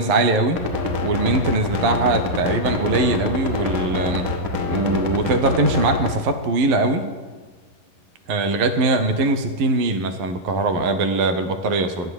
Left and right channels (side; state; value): left; late; 11 ms